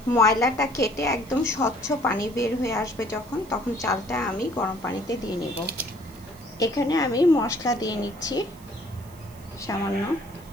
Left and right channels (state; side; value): noise; right; hiss, 24 dB below the sound